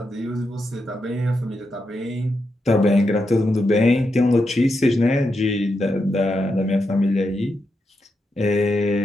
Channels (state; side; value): normal; both; correlation 0.85